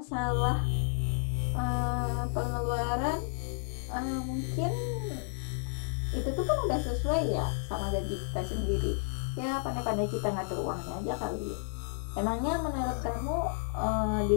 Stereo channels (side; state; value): right; silent; 57 dB below the other